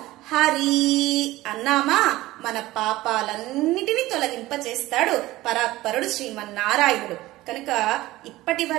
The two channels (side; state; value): left; quieter; 17.6 dB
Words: హరి అన్నామా మన పాపాలన్నిటినీ తొలగింపచేస్తాడు పరాత్పరుడు శ్రీమన్నారాయణుడు. కనుక ఇప్పటి